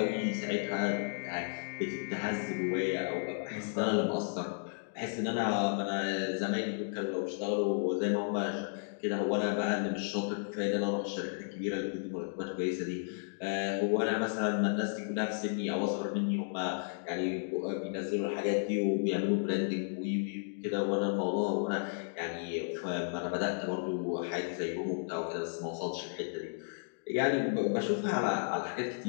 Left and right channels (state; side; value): silent; right; digital silence